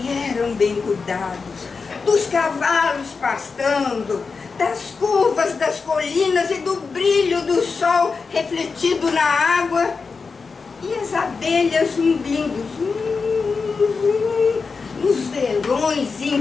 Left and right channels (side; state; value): right; quieter; 4.8 dB